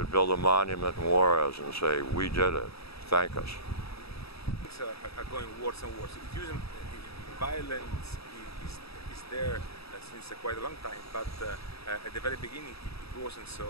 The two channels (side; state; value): right; late; 0.77 ms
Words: build a monument in Juarez and say, we did it, thank us. Things are going worse and worse. Violence is there since quite a long time, but at the very beginning it wasn't so.